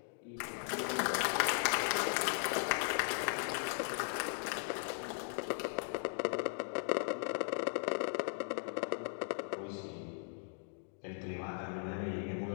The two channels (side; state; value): right; silent; digital silence